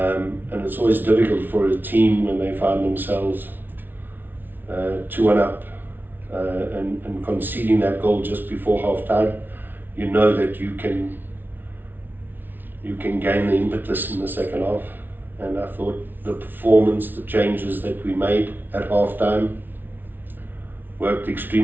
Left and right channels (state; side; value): late; left; 0.092 ms